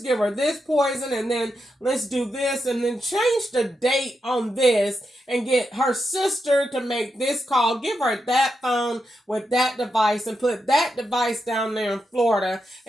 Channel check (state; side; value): normal; both; correlation 0.85